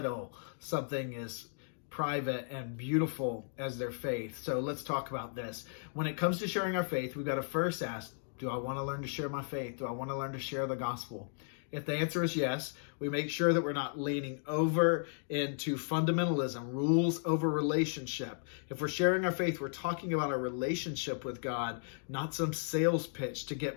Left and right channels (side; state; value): right; silent; digital silence